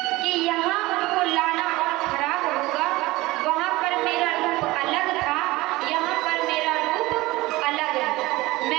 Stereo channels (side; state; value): left; quieter; 19.7 dB